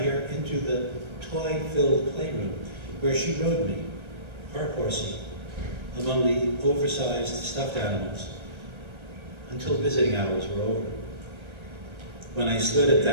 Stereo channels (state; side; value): late; left; 1.3 ms